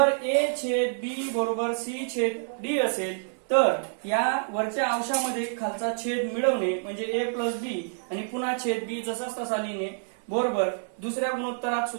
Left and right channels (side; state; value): left; silent; digital silence